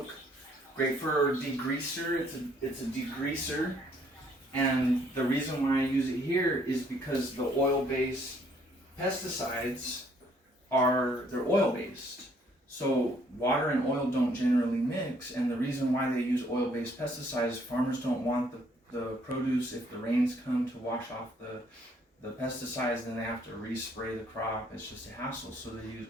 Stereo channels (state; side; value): normal; both; correlation 0.65